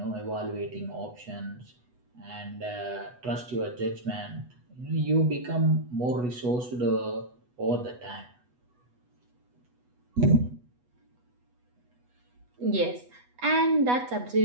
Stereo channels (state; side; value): late; left; 8.1 ms